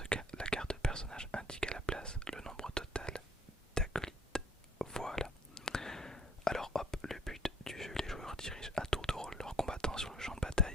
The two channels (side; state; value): both; normal; correlation 0.55